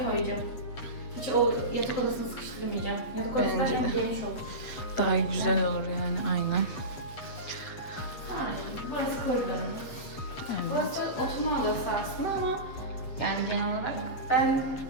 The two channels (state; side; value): late; right; 8.1 ms